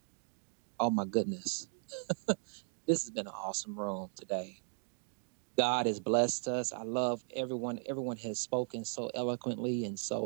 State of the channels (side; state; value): left; silent; 53 dB below the other